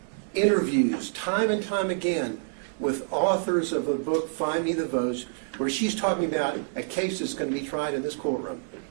interviews time and time again with authors of a book, Find Me the Votes, where she's talking about a case that's going to be tried in this courtroom.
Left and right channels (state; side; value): silent; left; 60 dB below the other